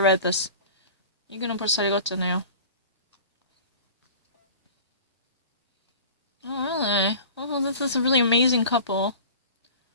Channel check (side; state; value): both; inverted; correlation -0.38